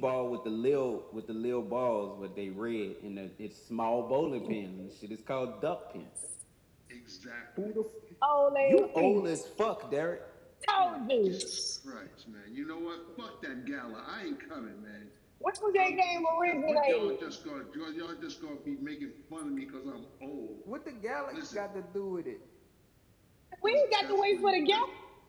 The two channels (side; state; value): both; identical; correlation 1.00